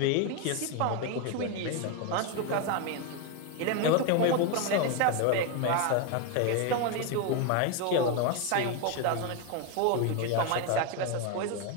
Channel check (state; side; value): different; both; correlation 0.01